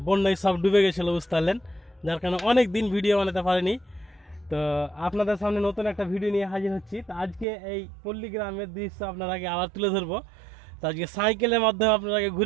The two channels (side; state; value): left; drops out; at 7.5 s